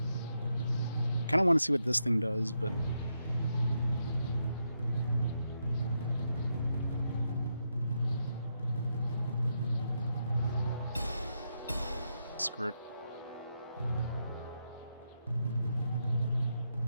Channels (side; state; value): both; inverted; correlation -0.82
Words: Kind of want to see what this thing does, but screw it.